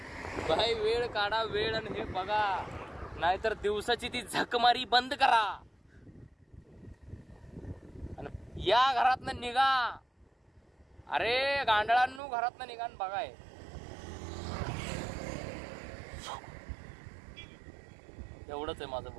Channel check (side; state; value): left; drops out; at 12.2 s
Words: भाई वेळ काढा, वेळ, आणि हे बघा. नाहीतर दिवसाची ती झकमारी बंद करा आणि या घरातनं निघा. अरे गांडळांनो, घरातनं निघा आणि बघाय. एवढंच आहे माझं